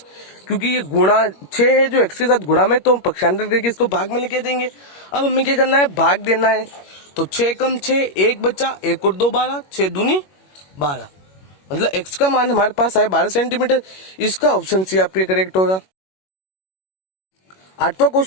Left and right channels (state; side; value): late; right; 21 ms